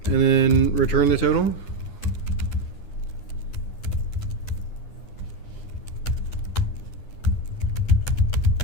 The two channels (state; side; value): late; right; 9.7 ms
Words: and then return the total.